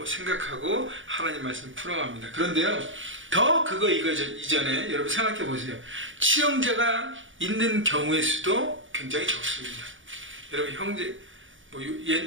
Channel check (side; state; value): left; late; 0.57 ms